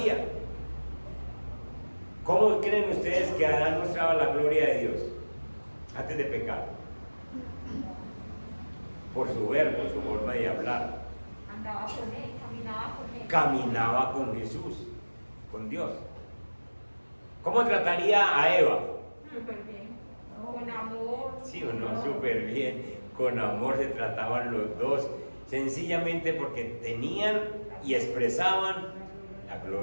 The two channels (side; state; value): both; inverted; correlation -1.00